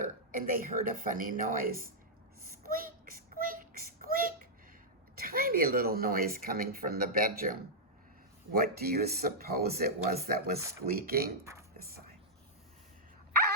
and they heard a funny noise. Squeak, squeak, squeak. A tiny little noise coming from the bedroom. What do you suppose it was that was squeaking? This side.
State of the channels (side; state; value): both; normal; correlation -0.08